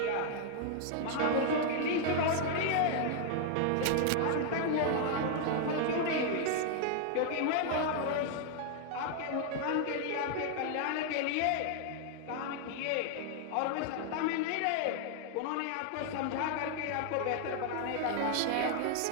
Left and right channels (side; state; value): both; different; correlation 0.00